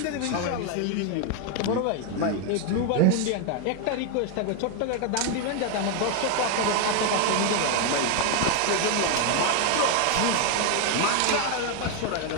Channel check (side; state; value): both; different; correlation 0.01